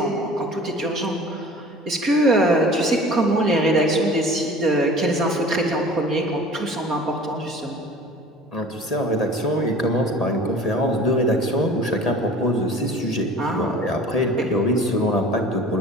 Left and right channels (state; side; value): normal; both; correlation 0.44